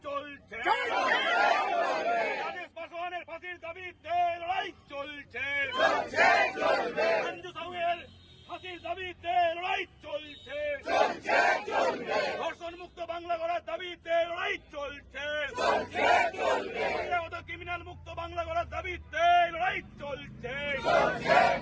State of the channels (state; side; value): identical; both; correlation 1.00